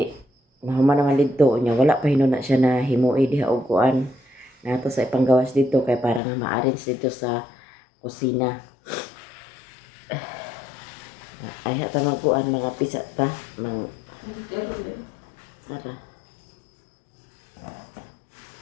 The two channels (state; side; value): drops out; right; at 6.2 s